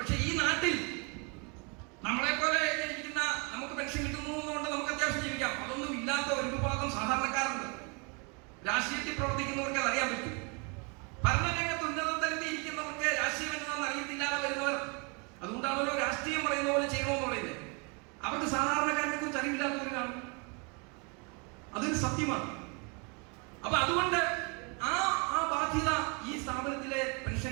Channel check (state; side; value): quieter; left; 33.0 dB